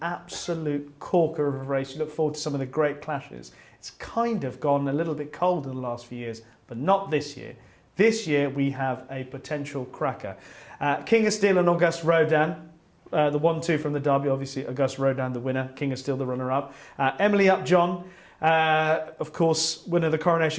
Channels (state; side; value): identical; both; correlation 1.00